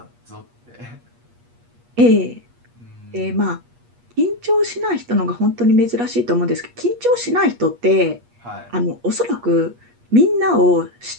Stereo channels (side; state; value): left; late; 8.4 ms